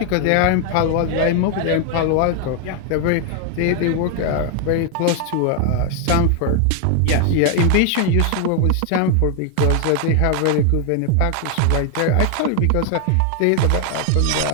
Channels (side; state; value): both; different; correlation 0.01